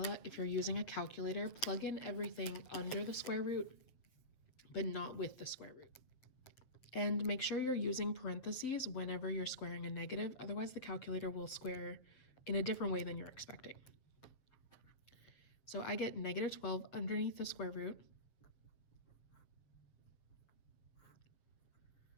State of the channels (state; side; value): late; right; 7.6 ms